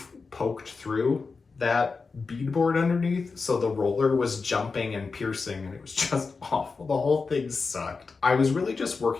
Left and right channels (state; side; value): quieter; right; 4.5 dB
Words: poked through that beadboard underneath, so the roller was jumping and piercing, and it was just awful. The whole thing sucked. I was really just